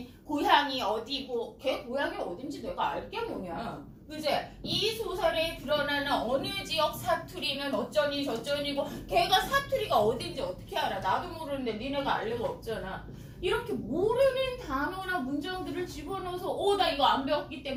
고향이 어디고 걔 고향이 어딘지 내가 알게 뭐냐. 그제? 이 소설에 드러나는 어느 지역 사투리는 어쩌니 저쩌니고 걔가 사투리가 어딘지 어떻게 알아. 나도 모르는데 니네가 알 리가 없잖아. 이렇게 모르는 단어나 문장들을 집어넣어서 나 이거 안 배웠기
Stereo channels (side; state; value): both; identical; correlation 1.00